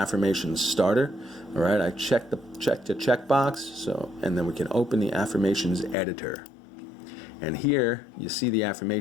starter. All right, I checked the checkbox, so, and then we can open the affirmations editor. And here you see the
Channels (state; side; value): drops out; right; at 6.0 s